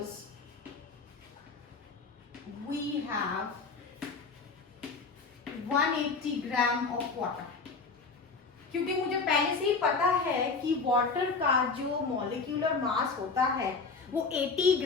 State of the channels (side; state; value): right; quieter; 4.5 dB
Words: we have 180 gram of water, क्योंकि मुझे पहले से ही पता है कि वाटर का जो मॉलिक्यूलर मास होता है वो 80